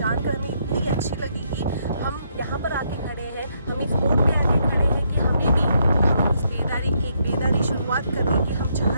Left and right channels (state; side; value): inverted; both; correlation -0.75